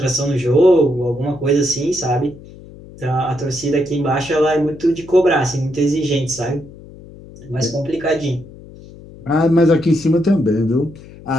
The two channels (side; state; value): left; noise; hum, 19 dB below the sound